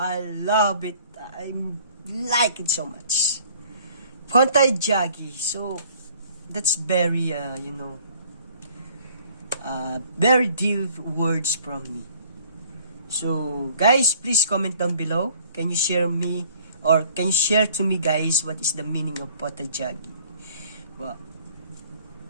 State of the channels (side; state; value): both; inverted; correlation -0.56